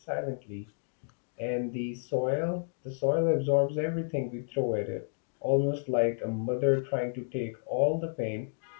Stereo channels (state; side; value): silent; right; digital silence